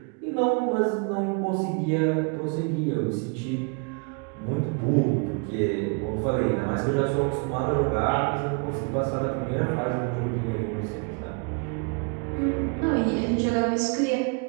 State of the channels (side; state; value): left; quieter; 35.7 dB